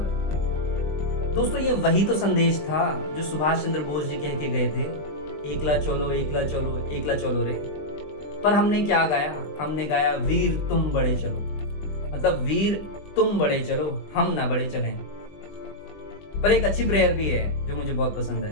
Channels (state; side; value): late; right; 20 ms